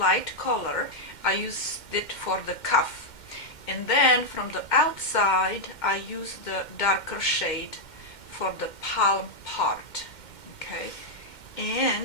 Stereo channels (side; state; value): right; late; 2.1 ms